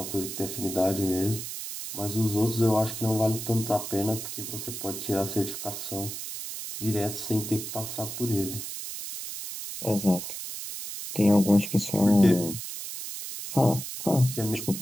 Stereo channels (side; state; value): right; noise; hiss, 7 dB below the sound